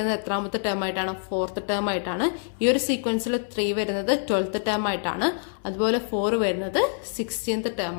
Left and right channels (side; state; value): right; silent; 61 dB below the other